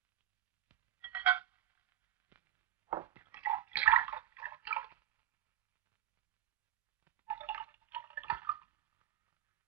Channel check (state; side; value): quieter; left; 12.5 dB